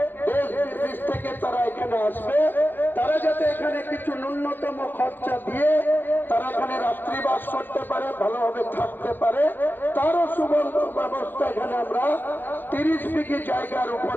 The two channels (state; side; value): late; right; 0.093 ms